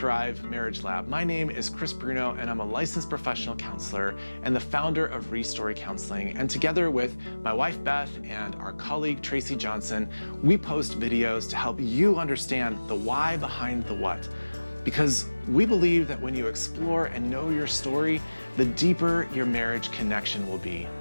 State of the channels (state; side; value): inverted; both; correlation -1.00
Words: Marriage Lab. My name is Chris Bruno, and I'm a licensed professional counselor and the founder of Restory Counseling. And together with my wife Beth and our colleague Tracy Johnson, we post videos to help you understand the why behind the what. Because we believe that when you explore and know your story, the deeper your marriage connection will be.